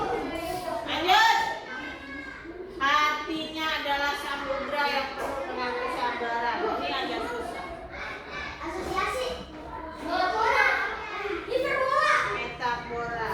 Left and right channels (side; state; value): both; identical; correlation 1.00